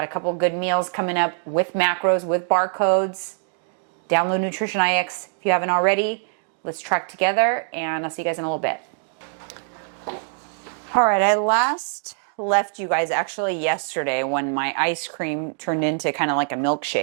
a couple good meals coming up with macros, with barcodes. Download Nutrition IX if you haven't already. Let's track together, and I'll see you guys in a little bit. All right, I last left you guys actually yesterday when my ice cream turned into kind of like a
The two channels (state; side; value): silent; left; digital silence